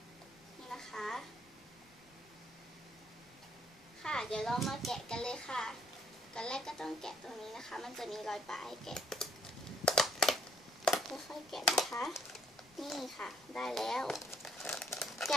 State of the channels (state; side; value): noise; left; rumble, 29 dB below the sound